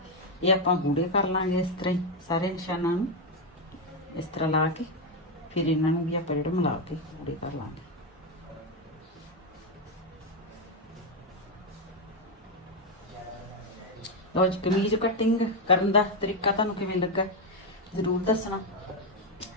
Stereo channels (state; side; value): normal; both; correlation 0.06